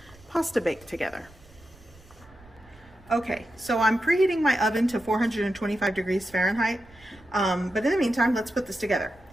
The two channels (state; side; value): noise; right; rumble, 25 dB below the sound